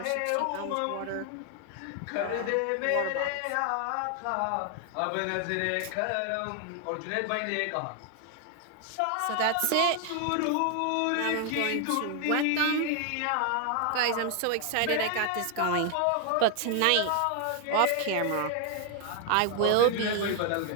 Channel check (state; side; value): different; both; correlation 0.00